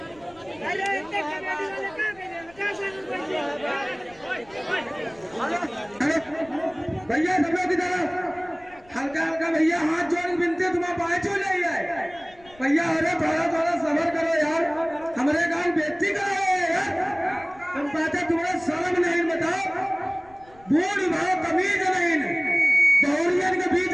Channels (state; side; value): noise; left; rumble, 27 dB below the sound